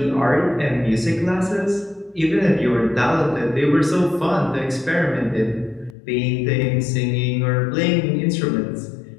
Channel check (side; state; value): right; drops out; at 6.0 s